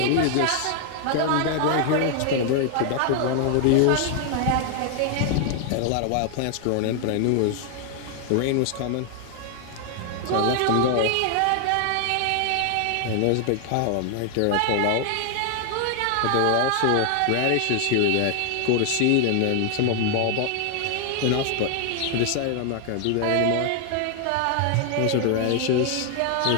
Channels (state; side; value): different; both; correlation 0.00